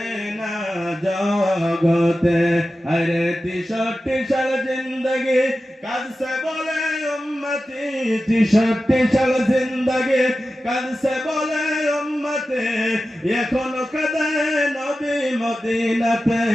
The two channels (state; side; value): normal; both; correlation 0.93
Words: না জগতে। আরে 63 সাল জিন্দগি কাঁদছে বলে উম্মতি, 63 সাল জিন্দগি কাঁদছে বলে উম্মতি, এখনো কাঁদে নবী মদিনাতে